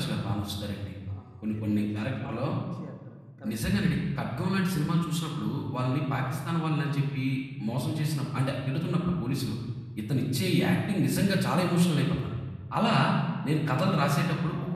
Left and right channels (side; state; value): both; identical; correlation 1.00